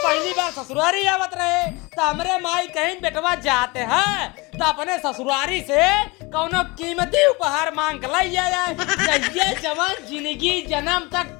बार ससुरारी आवत रहे तो हमरे माई कहीं बेटवा जाते हैं तो अपने ससुरारी से कौनो कीमती उपहार मांग के लाई जाए। ये जवान जिंदगी जन्म तक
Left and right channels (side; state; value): right; quieter; 25.4 dB